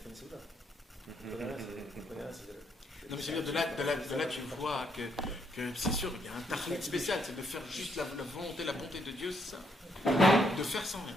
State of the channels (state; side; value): normal; both; correlation 0.74